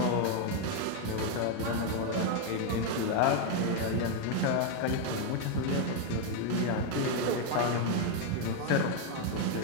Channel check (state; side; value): different; both; correlation 0.01